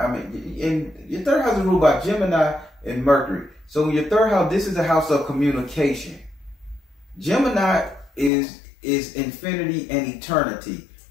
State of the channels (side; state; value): right; drops out; at 8.3 s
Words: Your third house is ruled by Gemini and Mercury. So in your third house, this is a house of communication. Gemini is infinity and eternity.